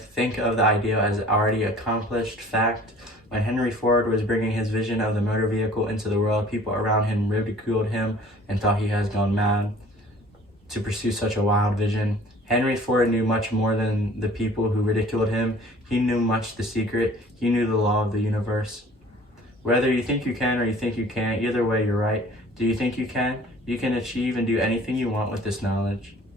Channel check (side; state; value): both; normal; correlation 0.50